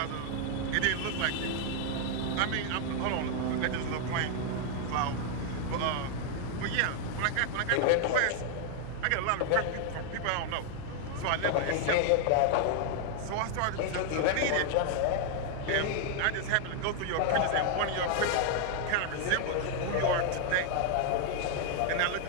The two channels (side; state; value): both; different; correlation 0.00